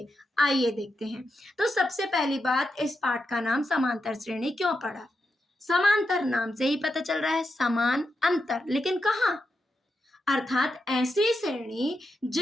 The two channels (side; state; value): both; normal; correlation 0.86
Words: आइए देखते हैं। तो सबसे पहली बात, इस पाठ का नाम समांतर श्रेणी क्यों पड़ा? समांतर नाम से ही पता चल रहा है, समान अंतर, लेकिन कहाँ? अर्थात ऐसी श्रेणी